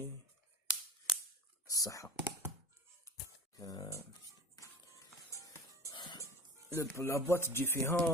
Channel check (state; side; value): normal; both; correlation 0.37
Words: Ça. La boîte